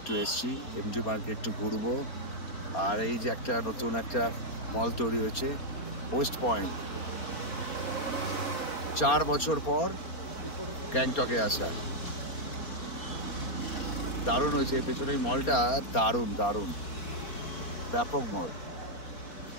এসছি এমজি মার্গে একটু ঘুরবো। আর এই যে একটা নতুন একটা মল তৈরি হয়েছে ওয়েস্ট পয়েন্ট, 4 বছর পর গ্যাংটকে আসা, দারুণ হয়েছে। পেছনে এই মলটা দারুণ দারুণ, ব্যাপক মল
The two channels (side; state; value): right; late; 4.3 ms